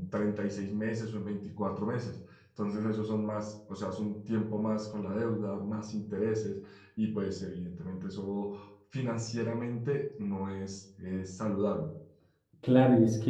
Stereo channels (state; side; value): identical; both; correlation 1.00